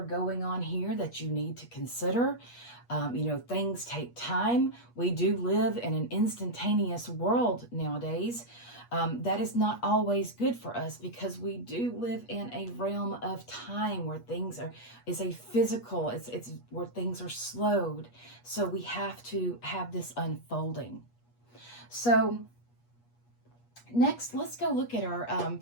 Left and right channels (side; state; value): right; late; 8.4 ms